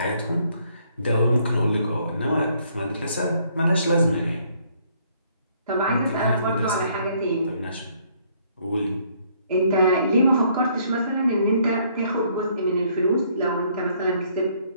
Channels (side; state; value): both; inverted; correlation -0.66